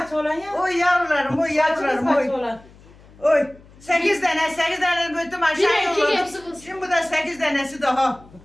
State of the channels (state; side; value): noise; left; hum, 24 dB below the sound